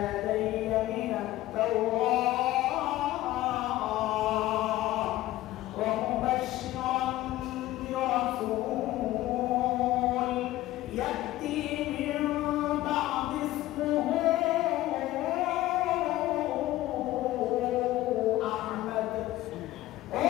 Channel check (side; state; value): right; quieter; 16.0 dB